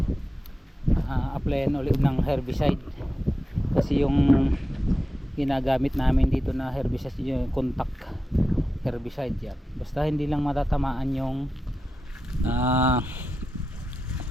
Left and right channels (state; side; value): normal; both; correlation 0.92